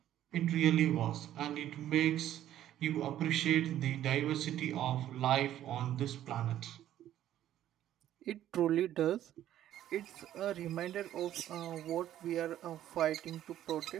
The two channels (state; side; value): quieter; left; 12.2 dB